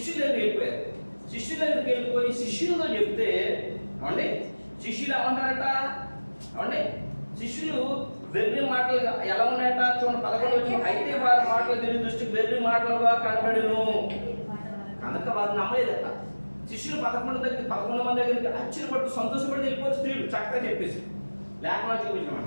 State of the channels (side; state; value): both; inverted; correlation -1.00